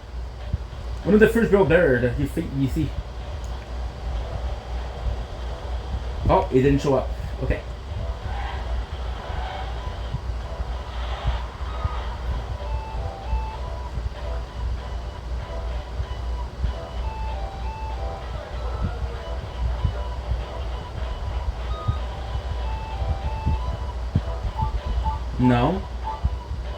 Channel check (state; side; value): identical; both; correlation 1.00